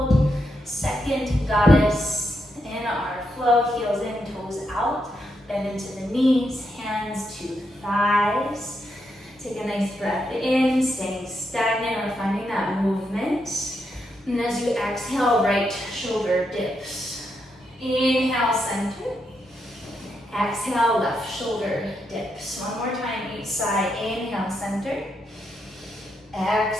Second goddess in our flow. Heels in, toes out. Bend into the knees. Hands to thighs. Take a nice breath in, staying stagnant or finding that movement. And as you exhale, right shoulder dips. Inhale, center. Exhale, left shoulder dips. One more time, each side. Inhale, center.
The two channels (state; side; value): normal; both; correlation 0.82